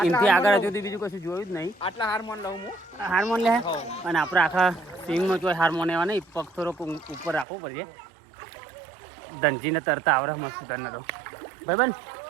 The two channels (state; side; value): drops out; left; at 7.5 s